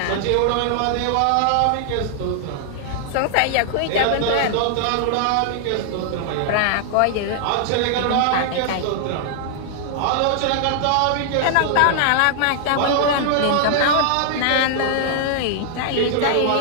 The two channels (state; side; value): different; both; correlation 0.00